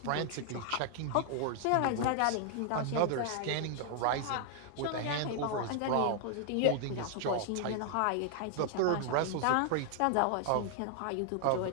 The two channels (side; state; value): both; different; correlation -0.01